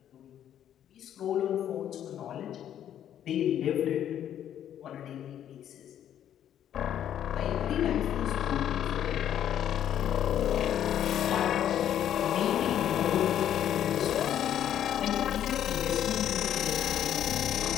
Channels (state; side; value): quieter; right; 10.5 dB